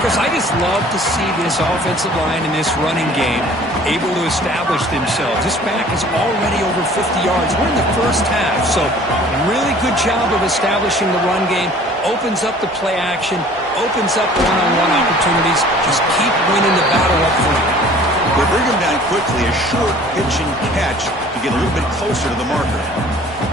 I just love to see this offensive line in this running game able to establish themselves. This back is already over 50 yards. We're in the first half, so really good job of establishing the run game. Opens up the play action, opens up one-on-one opportunities. Just keep winning the battle up front. They bring him down quickly, a short pitch and catch to get a little bit closer to the marker.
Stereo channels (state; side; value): normal; both; correlation 0.50